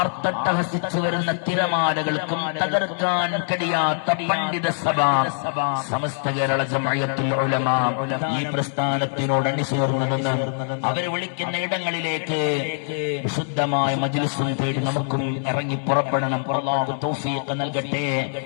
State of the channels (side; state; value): right; silent; digital silence